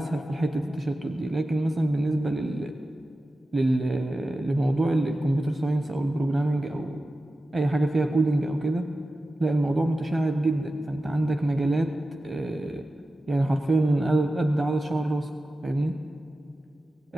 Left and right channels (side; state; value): both; normal; correlation 0.94